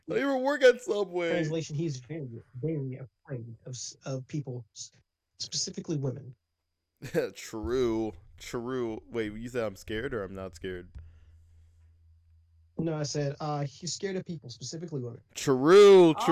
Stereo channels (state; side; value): identical; both; correlation 1.00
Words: I don't even work at Subway. Translation. He's very, very afraid of people, specifically women. True. True. Wait, you said I'm scared or I'm not scared? No, I said he's scared of people, specifically women. True. Oh,